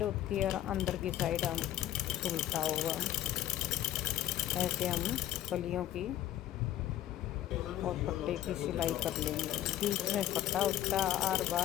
होती है और अंदर की साइड हम उल्टा होगा। ऐसे हम कलियों की और पट्टे की सिलाई कर लेंगे। बीच में फट्टा होता है, हर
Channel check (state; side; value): quieter; right; 12.9 dB